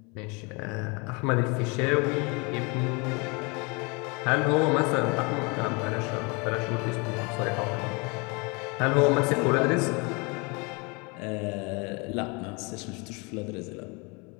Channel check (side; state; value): right; quieter; 29.7 dB